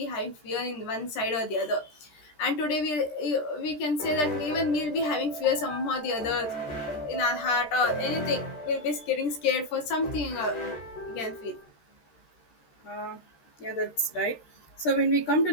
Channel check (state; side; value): late; right; 13 ms